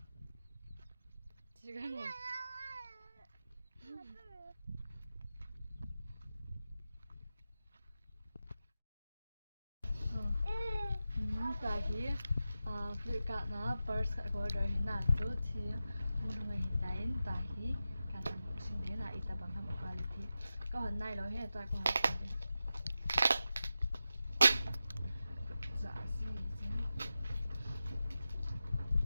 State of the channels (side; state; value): both; inverted; correlation -0.92